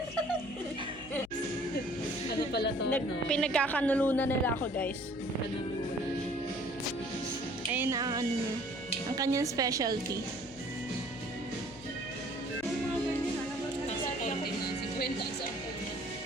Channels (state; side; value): noise; left; hum, 20 dB below the sound